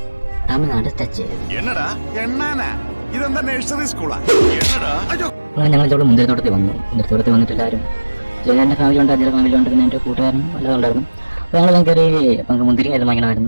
തമിഴ്നാട് ടച്ച് ചെയ്തു. അങ്ങനെ ഞങ്ങൾ ഇവിടെ മുന്തിരിത്തോട്ടത്തിൽ വന്നു. മുന്തിരിത്തോട്ടത്തിൽ വന്നിട്ട് എല്ലാവരും എൻ്റെ ഫാമിലി ഉണ്ട്, അജിയുടെ ഫാമിലി ഉണ്ട്, പിന്നെ എൻ്റെ കൂട്ടുകാരനും എല്ലാം ഉണ്ടായിരുന്നു. അപ്പോൾ ഞങ്ങൾ കയറി നമുക്ക് മുന്തിരി എല്ലാം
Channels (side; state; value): both; inverted; correlation -1.00